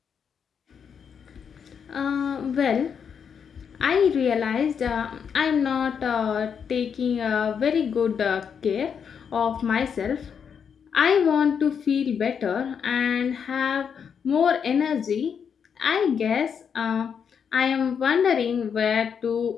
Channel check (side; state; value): right; quieter; 7.1 dB